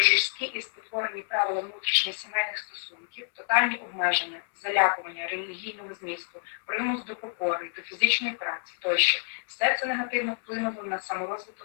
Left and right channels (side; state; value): right; silent; 59 dB below the other